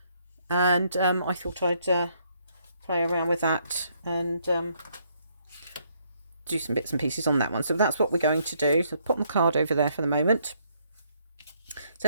and I thought I'd play around with that and do some bits and pieces on that one. So that's what we're going to do. So put the card over there for the moment.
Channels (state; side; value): inverted; both; correlation -0.71